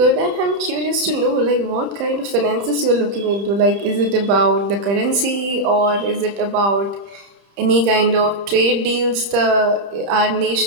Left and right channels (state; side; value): late; left; 30 ms